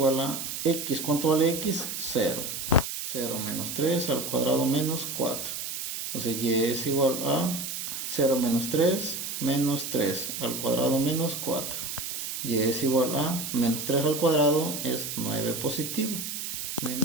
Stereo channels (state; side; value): noise; right; hiss, 5 dB below the sound